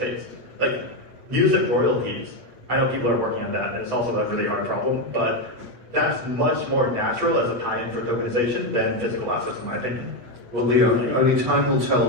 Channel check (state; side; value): late; left; 8.6 ms